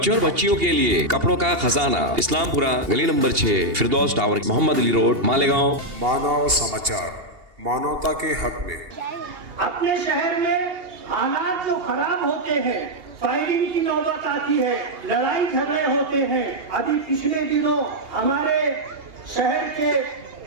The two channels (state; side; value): late; left; 2.8 ms